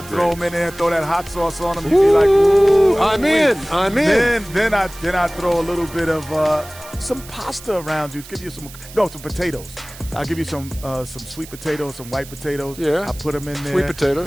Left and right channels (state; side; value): noise; right; hiss, 17 dB below the sound